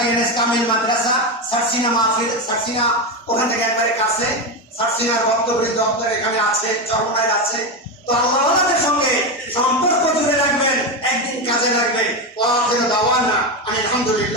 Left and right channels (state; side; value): normal; both; correlation 0.13